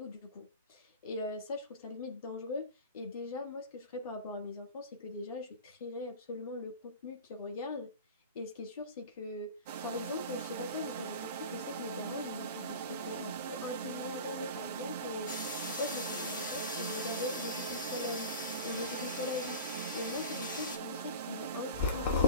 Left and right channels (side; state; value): both; inverted; correlation -0.34